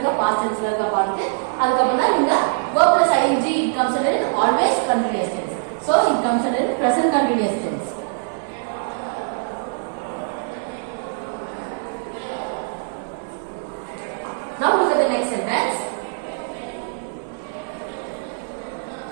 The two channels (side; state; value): left; silent; 64 dB below the other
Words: past tense ல இருக்க பார்த்துட்டு அதுக்கு அப்புறம் தான் இந்த verb plus ing it comes under always continuous tense. So it comes under present continuous tense. Now look at the next sentence.